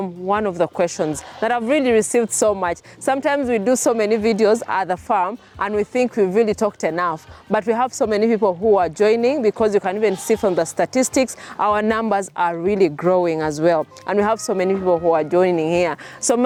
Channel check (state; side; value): identical; both; correlation 1.00